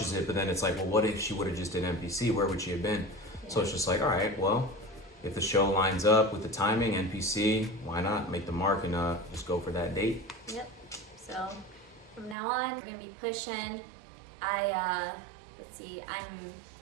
it. But then it's like, well, what if she would have just did NPC? Where would she have been? So it's just like, all right, well, if the show lines up with the timing, NPC, why not make the mark and just go for that date? Yep. So from now on, we're gonna be pushing. Let's see, I'm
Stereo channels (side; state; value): left; drops out; at 12.4 s